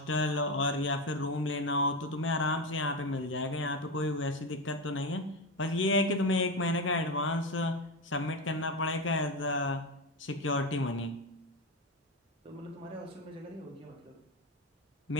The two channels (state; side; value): normal; both; correlation 0.16